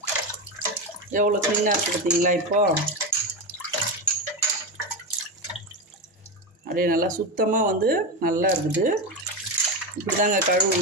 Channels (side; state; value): both; normal; correlation 0.16